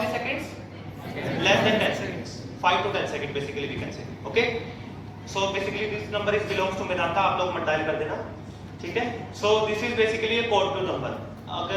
seconds, less than 10 seconds, 5 to 10 seconds basically we can say, okay? So basically this number is belongs to Medanta, आप लोग मत dial कर देना, ठीक है? So this is basically a code blue number.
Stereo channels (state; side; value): identical; both; correlation 1.00